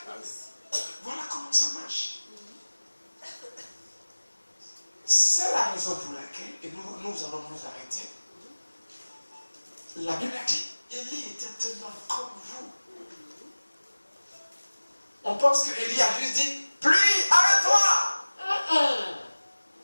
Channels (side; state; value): both; inverted; correlation -1.00